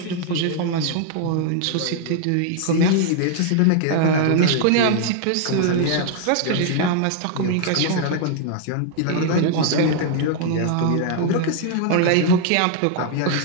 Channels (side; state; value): both; different; correlation 0.00